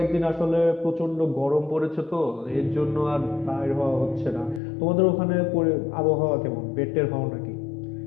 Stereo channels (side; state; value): right; drops out; at 4.6 s